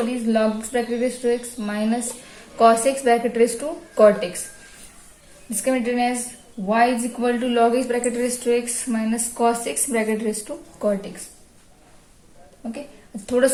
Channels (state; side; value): identical; both; correlation 1.00